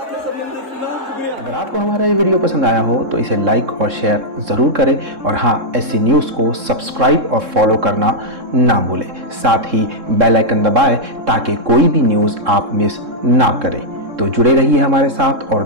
संबंधित सुना। अगर आपको हमारा ये वीडियो पसंद आया हो तो इसे लाइक और शेयर ज़रूर करें, और हाँ, SC न्यूज़ को सब्सक्राइब और फॉलो करना ना भूलें। साथ ही बेल आइकन दबाएं ताकि कोई भी न्यूज़ आप मिस ना करें। तो जुड़े रहिए हमारे साथ और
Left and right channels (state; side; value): late; left; 3.7 ms